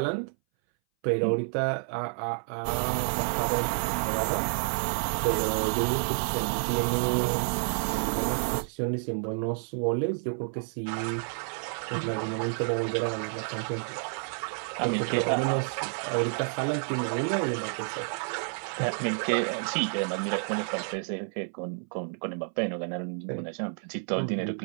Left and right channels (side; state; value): left; silent; 58 dB below the other